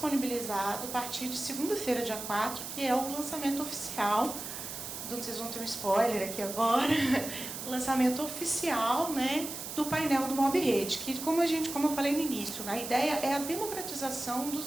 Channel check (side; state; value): right; noise; hiss, 8 dB below the sound